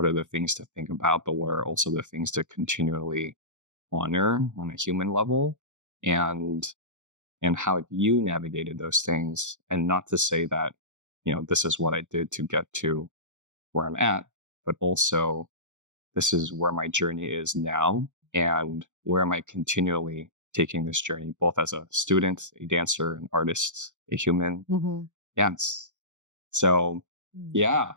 are the things to think about, but what are also the things to continually honor on a human level, and how you navigated those things? And not to say that, this is what I did to get to where I'm at, but also this is where my journey is now, and where am I continually taking this journey, both as a student, a dancer, an artist, a human. Yes. So,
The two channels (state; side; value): late; left; 0.85 ms